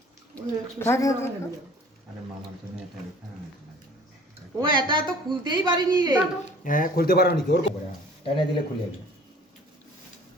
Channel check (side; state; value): both; normal; correlation 0.50